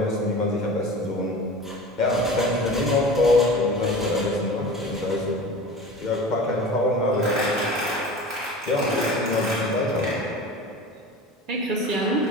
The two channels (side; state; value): both; normal; correlation 0.35